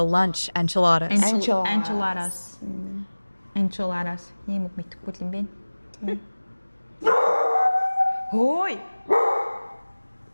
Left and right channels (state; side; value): inverted; both; correlation -1.00